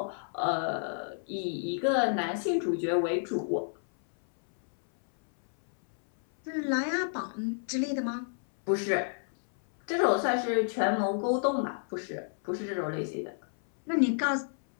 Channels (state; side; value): silent; right; 58 dB below the other